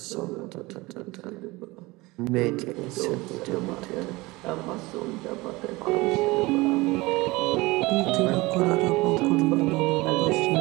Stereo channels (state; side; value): quieter; left; 21.9 dB